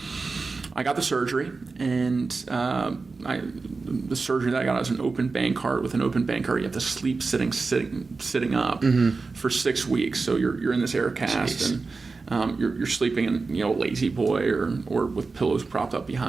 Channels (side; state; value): left; quieter; 4.1 dB